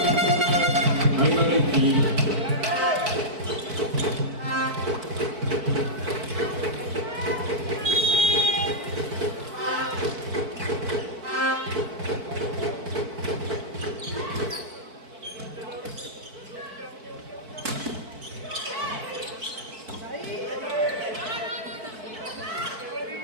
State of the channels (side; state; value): left; late; 4.5 ms